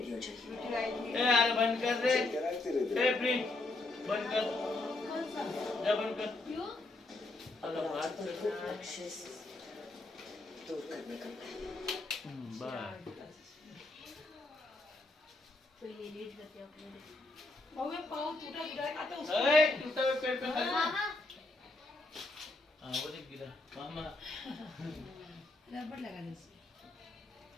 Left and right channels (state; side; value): quieter; right; 3.0 dB